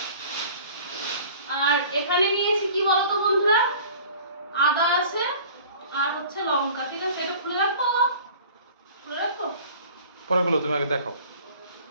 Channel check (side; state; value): both; inverted; correlation -0.46